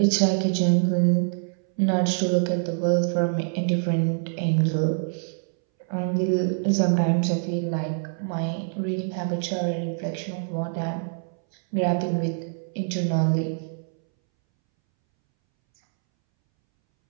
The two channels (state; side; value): silent; left; 62 dB below the other